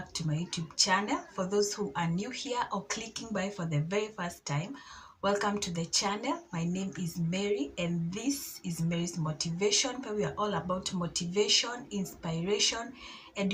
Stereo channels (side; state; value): both; identical; correlation 1.00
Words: to my YouTube channel. For those who are new here or clicking by for the very first time, welcome to the channel. My name is Mary and this is Mary's Motivation, where we are all about motivation, inspiration,